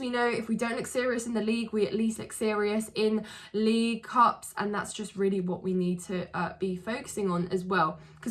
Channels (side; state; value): both; identical; correlation 1.00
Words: know if we don't look serious in the league, we at least look serious in league cups, and that's just really what we need to be focusing on as well,